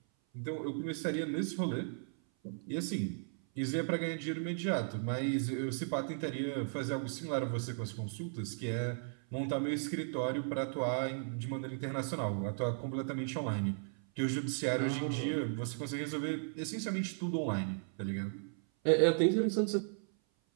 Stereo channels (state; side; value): silent; left; 54 dB below the other